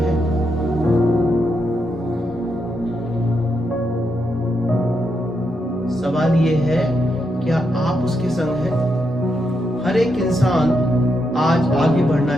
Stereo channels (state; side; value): normal; both; correlation 0.82